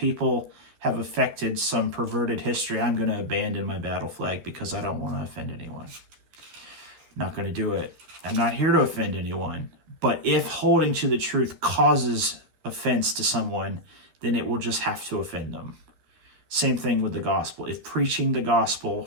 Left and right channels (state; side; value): late; left; 12 ms